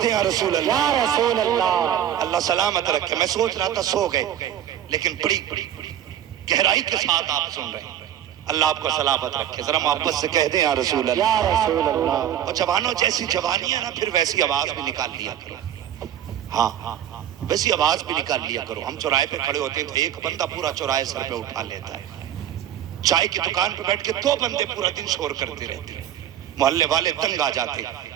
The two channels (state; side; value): quieter; left; 10.6 dB